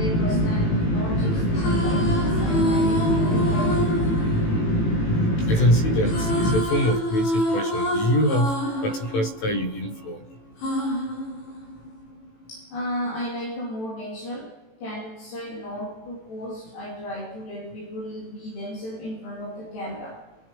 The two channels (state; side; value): late; right; 18 ms